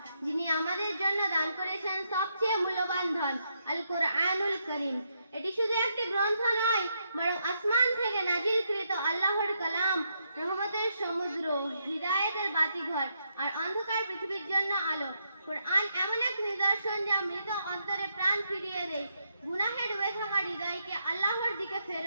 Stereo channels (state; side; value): inverted; both; correlation -0.79